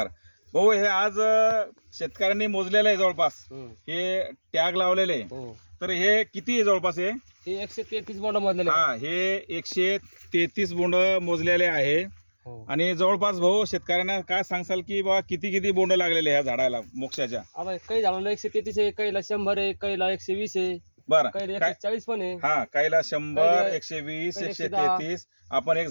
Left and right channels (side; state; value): both; inverted; correlation -1.00